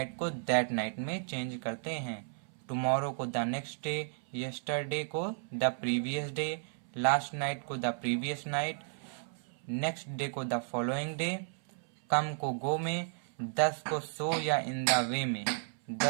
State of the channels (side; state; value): left; silent; 55 dB below the other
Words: को दैट नाइट में चेंज करते हैं। टुमारो को द नेक्स्ट डे, यस्टरडे को the previous day, last night को the previous night, next day को द फॉलोइंग डे। कम को गो में, 10 को सो या इन द वे में।